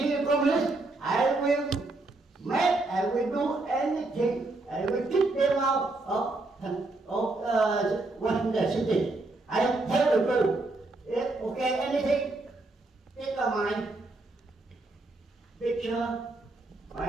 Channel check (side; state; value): left; quieter; 3.1 dB